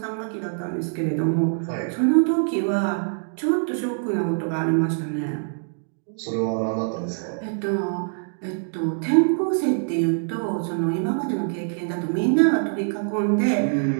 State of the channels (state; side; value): silent; left; digital silence